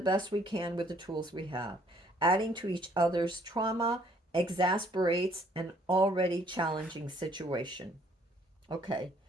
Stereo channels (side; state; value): both; normal; correlation 0.63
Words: best we can with the tools we have. Adding to each other's trauma exasperates an already challenging situation. Okay,